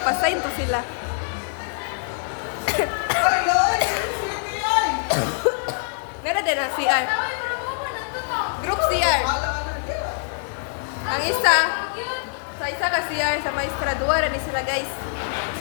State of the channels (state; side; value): silent; right; digital silence